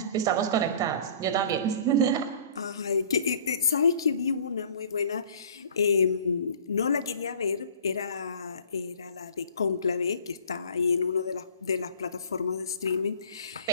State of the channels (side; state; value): both; inverted; correlation -0.48